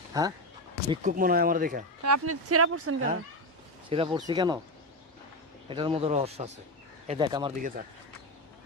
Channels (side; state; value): both; normal; correlation 0.13